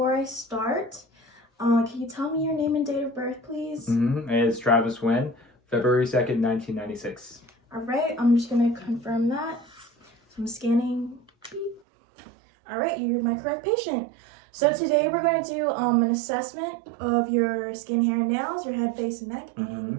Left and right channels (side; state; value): left; drops out; at 11.8 s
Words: I start, can you tell me your name and date of birth, please? It's Travis Wynn, February 2nd, 1996. All right, I'm just going to confirm that. So I'm scanning. All right, you're my correct patient. So today we're going to do an assessment of your skin, hair, and nails, your head, face, and neck, and